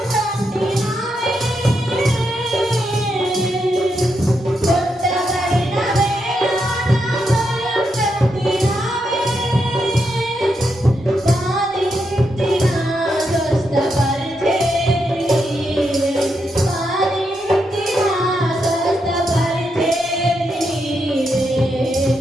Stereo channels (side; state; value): both; normal; correlation 0.82